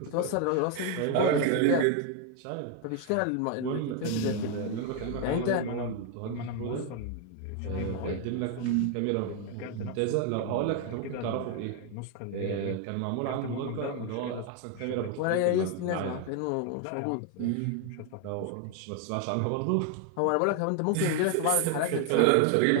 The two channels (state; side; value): different; both; correlation 0.01